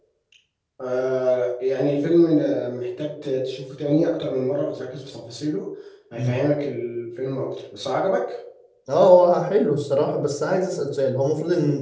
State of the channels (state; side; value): identical; both; correlation 1.00